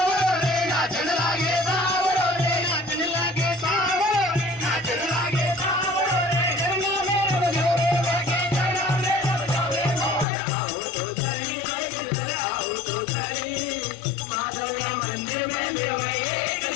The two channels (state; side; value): drops out; right; at 10.2 s